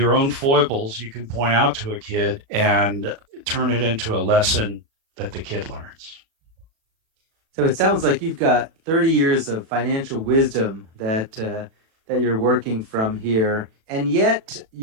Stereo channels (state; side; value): late; left; 36 ms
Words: own foibles you can point out to a kid and turn it into a lesson that the kid learns. So it sounds like you've got 30 years of financial wisdom that you're working from here, and yet